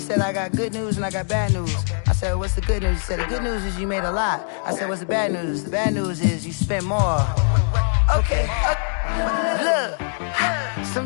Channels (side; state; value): right; silent; 64 dB below the other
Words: I got good news and I got bad news. I said, what's the good news? He said, the good news is you made a lot. I said, what's the bad news? The bad news is you spent more. Okay, look,